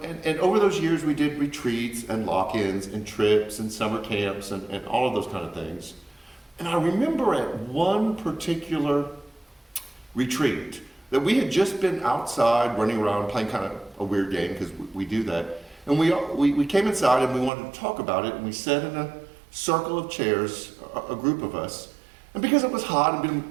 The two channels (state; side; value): drops out; left; at 17.5 s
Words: over those years, we did retreats and lock-ins and trips and summer camps and all of those kind of things. And I remember at one particular retreat that we had just been outside running around playing kind of a weird game because we do that. And we came inside and we wanted to talk about it, and we sat in a circle of chairs, a group of us. And because it was hot and been